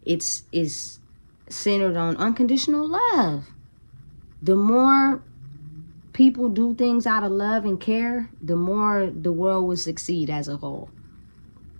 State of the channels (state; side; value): inverted; both; correlation -1.00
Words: it's centered on unconditional love. The more people do things out of love and care, the more the world will succeed as a whole.